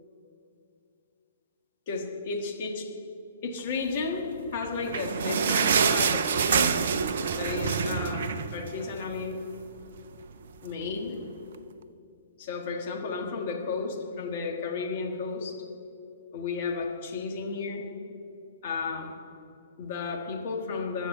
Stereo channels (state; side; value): inverted; both; correlation -0.54